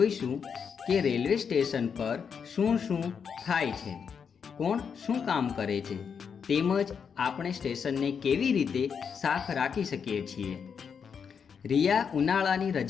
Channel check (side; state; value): right; quieter; 6.7 dB